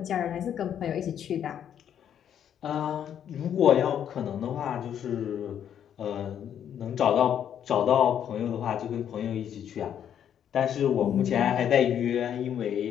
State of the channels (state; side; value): quieter; right; 9.4 dB